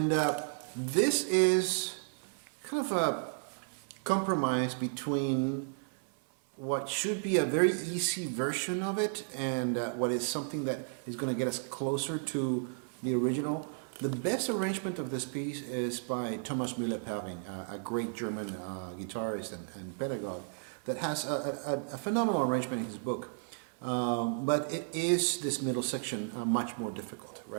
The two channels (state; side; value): silent; left; 55 dB below the other